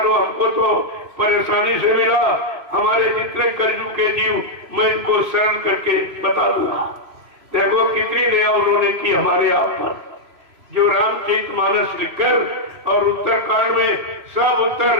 हमको तो परेशानी से मिला, हमारे जितने कर्जू के जीव मैं इनको शरण करके बता दूंगा। देखो कितनी दया उन्होंने की हमारे आप पर। जो रामचरितमानस लिखकर और उत्तरकांड में सब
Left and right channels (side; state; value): left; late; 3.0 ms